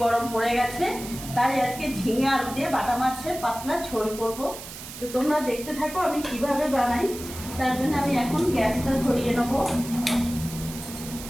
গরম পড়ে গেছে, তাই আজকে ঝিঙে আলু দিয়ে বাটা মাছের পাতলা ঝোল করব। তো তোমরা দেখতে থাকো আমি কিভাবে বানাই। তার জন্য আমি এখন গ্যাসটা ধরিয়ে নেব।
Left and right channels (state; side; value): noise; right; hiss, 12 dB below the sound